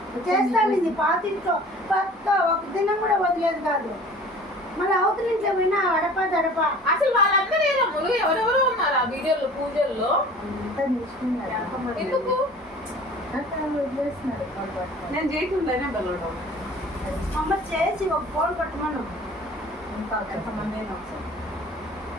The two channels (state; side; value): normal; both; correlation 0.45